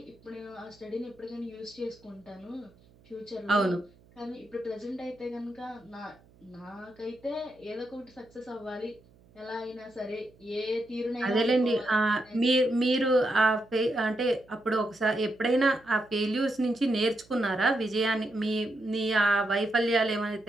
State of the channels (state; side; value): noise; right; hum, 28 dB below the sound